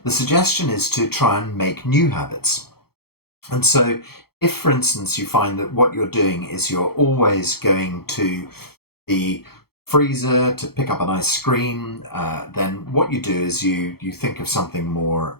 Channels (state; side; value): late; right; 0.95 ms